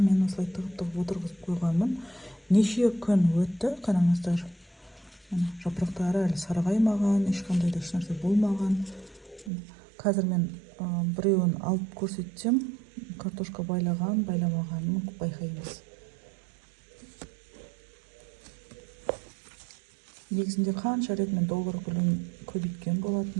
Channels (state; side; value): drops out; left; at 9.5 s